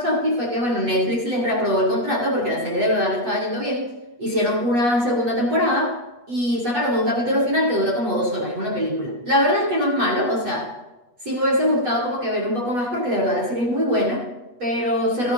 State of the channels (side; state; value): left; late; 8.2 ms